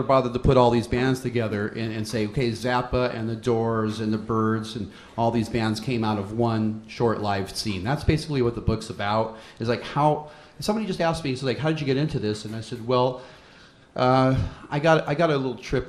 bothered to put all these bands together and say, okay, Zappa and the Doors and the Byrds and all these bands came out of one short-lived scene. That's basically what the book's about. Is like how somebody just asked me, so like, how did you get into this? And I said, well, I got a little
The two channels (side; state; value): both; identical; correlation 1.00